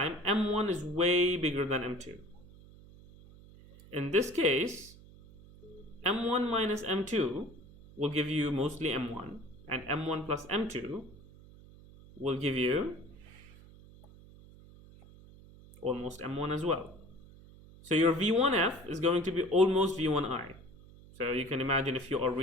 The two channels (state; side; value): noise; right; hum, 21 dB below the sound